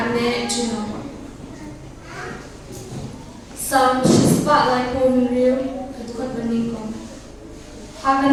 juno. Sam shispa like home real, kadukot beningkong.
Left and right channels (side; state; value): both; identical; correlation 1.00